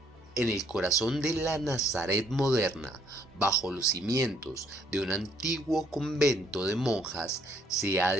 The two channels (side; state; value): both; normal; correlation 0.66